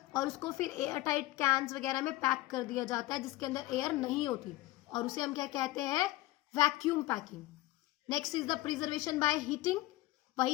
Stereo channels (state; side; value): quieter; right; 17.7 dB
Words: और उसको फिर एयर टाइट कैंस वगैरह में पैक कर दिया जाता है जिसके अंदर एयर नहीं होती, और उसे हम क्या कहते हैं? Vacuum packing. Next is the preservation by heating,